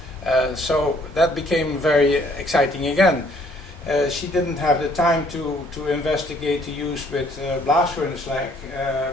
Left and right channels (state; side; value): normal; both; correlation 0.62